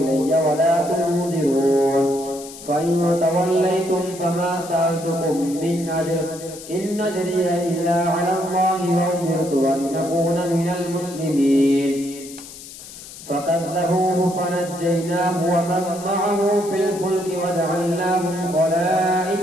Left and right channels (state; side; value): noise; left; hiss, 15 dB below the sound